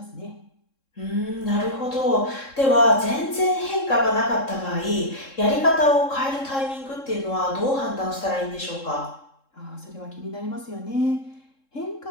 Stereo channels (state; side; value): late; right; 3.7 ms